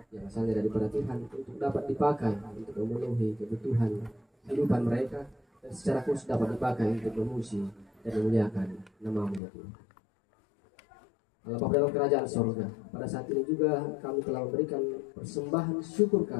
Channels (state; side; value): drops out; right; at 9.4 s